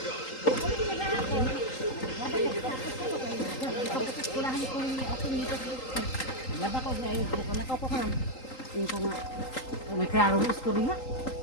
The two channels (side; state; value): right; late; 3.8 ms